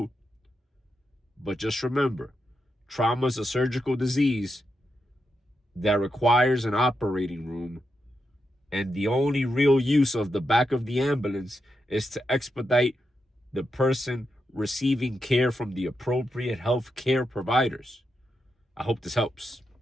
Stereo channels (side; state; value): both; normal; correlation 0.85